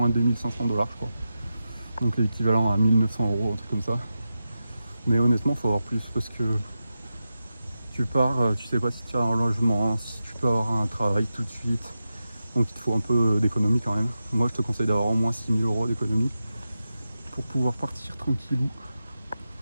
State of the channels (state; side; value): inverted; both; correlation -0.91